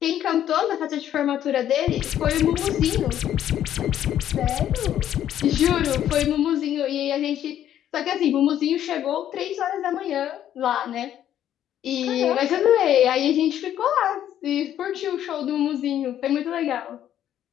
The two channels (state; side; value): quieter; right; 11.0 dB